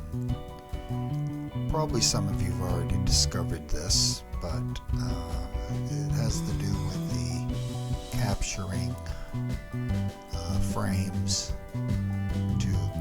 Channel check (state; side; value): identical; both; correlation 1.00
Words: Probably some of you have already discovered this, but it has to do with the capturing frames to